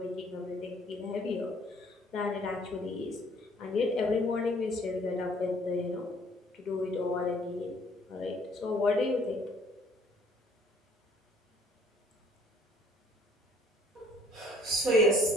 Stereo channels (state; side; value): normal; both; correlation 0.59